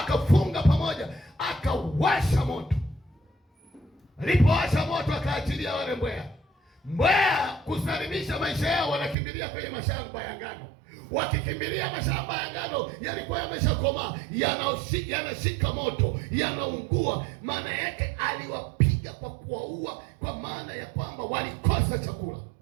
pamoja, akawasha moto. Alipowasha moto akaachilia wale mbweha. Mbweha kusalimisha maisha yao, wanakimbilia kwenye mashamba ya ngano. Wakikimbilia mashamba ya ngano yalikuwa yameshakomaa, yanashika moto, yanaungua. Maana yake aliwapiga kwa kuwaua, kwa maana ya kwamba walikosa chakula.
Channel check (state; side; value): drops out; left; at 9.2 s